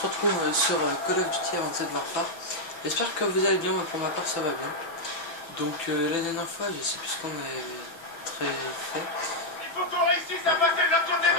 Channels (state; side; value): late; right; 5.9 ms